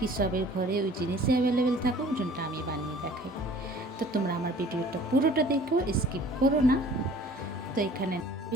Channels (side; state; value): both; normal; correlation 0.50